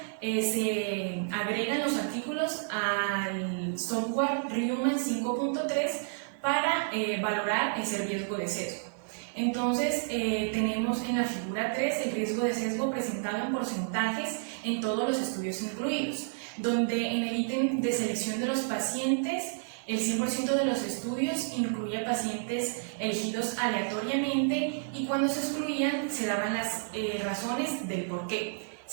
se agregan los artículos al software Reumann 5.3 para valorar ese riesgo de sesgo. Entonces tenemos en la figura 3 el riesgo de sesgo presentado en porcentajes en todos los estudios incluidos, donde en el ítem de selección de los pacientes el 100% de los estudios incluía pacientes elegidos aleatoriamente, y cuando se excluían se daban las razones del por qué.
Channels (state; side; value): silent; left; digital silence